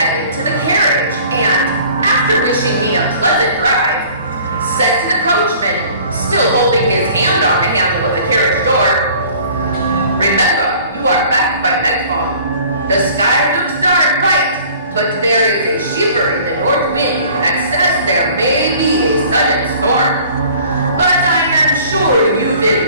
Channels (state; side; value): inverted; both; correlation -0.50